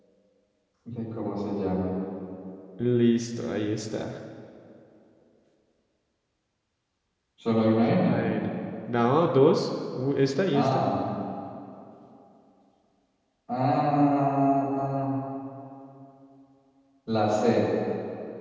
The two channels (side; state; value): both; identical; correlation 1.00